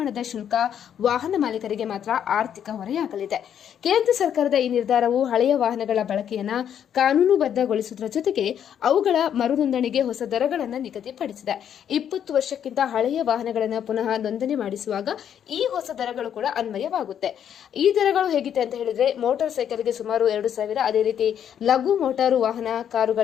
ಶುಲ್ಕ ವಾಹನ ಮಾಲೀಕರಿಗೆ ಮಾತ್ರ ಆರ್ಥಿಕ ಹೊರೆಯಾಗಲಿದೆ. ಕೇಂದ್ರ ಸರ್ಕಾರದ ಈ ನಿರ್ಧಾರವು ಹಳೆಯ ವಾಹನಗಳ ಬಳಕೆಯನ್ನು ಕಾನೂನುಬದ್ಧಗೊಳಿಸುವುದರ ಜೊತೆಗೆ ಅವುಗಳ ಮರು ನೋಂದಣಿಗೆ ಹೊಸ ದರಗಳನ್ನು ನಿಗದಿಪಡಿಸಿದೆ. 20 ವರ್ಷಕ್ಕಿಂತ ಹಳೆಯ ವಾಹನಗಳನ್ನು ಪುನಃ ನೋಂದಣಿ ಮಾಡಿಸುವಾಗ ಈ ಹೊಸ ದರಗಳು ಕೂಡ ಅನ್ವಯವಾಗುತ್ತೆ. ಈ ದರಗಳು ಹೇಗಿದೆ ಅಂತ ಹೇಳಿದ್ರೆ, ಮೋಟಾರ್ ಸೈಕಲ್ಗೆ ಸುಮಾರು 2,000, ಅದೇ ರೀತಿ ಲಘು ಮೋಟಾರು ವಾಹನ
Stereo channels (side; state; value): right; quieter; 9.2 dB